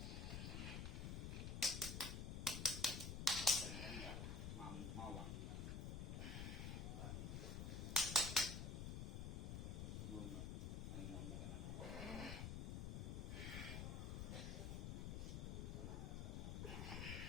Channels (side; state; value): left; noise; rumble, 2 dB below the sound